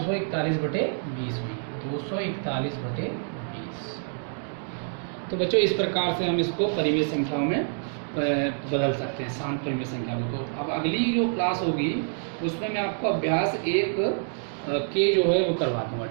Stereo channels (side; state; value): left; silent; digital silence